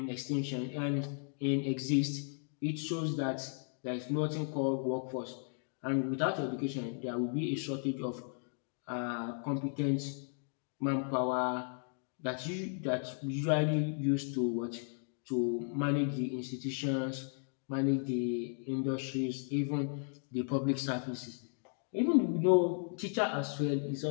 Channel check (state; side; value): silent; right; 54 dB below the other